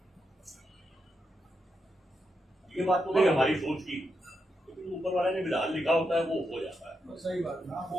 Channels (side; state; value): both; normal; correlation 0.84